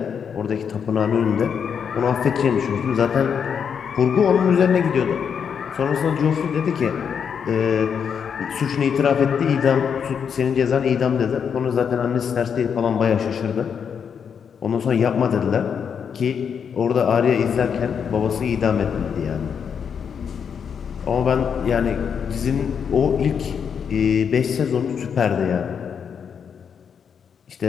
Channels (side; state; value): right; quieter; 7.1 dB